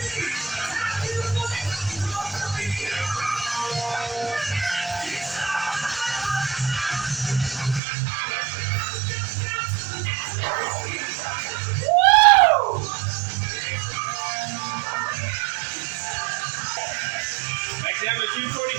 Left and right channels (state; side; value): drops out; left; at 7.8 s